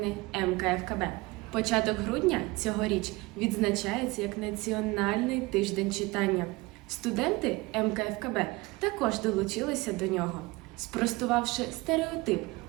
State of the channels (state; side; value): quieter; left; 22.6 dB